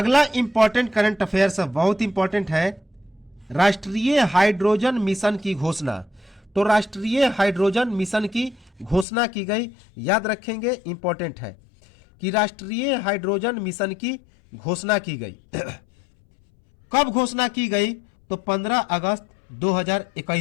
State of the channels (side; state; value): right; drops out; at 9.1 s